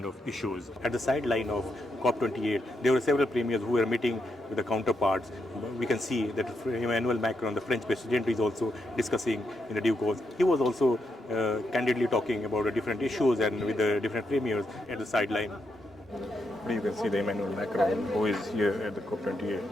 of issues. At the sideline of COP28, there were several premiers who were meeting with the counterparts. We can see that Emmanuel Macron, the French president, is also discussing in the due course. He was also candidly talking about the different issues and with the different premiers at the sideline. You can see the Emmanuel Macron, who is here at the COP28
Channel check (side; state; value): both; normal; correlation 0.82